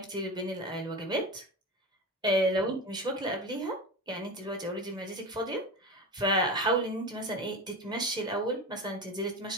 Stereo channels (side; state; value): both; normal; correlation 0.26